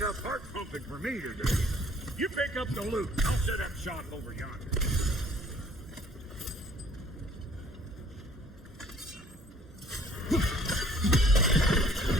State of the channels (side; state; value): both; normal; correlation 0.57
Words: heart pumping for me today. You pick up the loot. I'll set up shop over yonder.